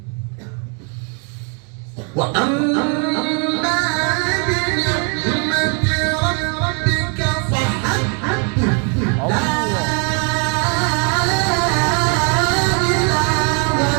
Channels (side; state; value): left; quieter; 37.7 dB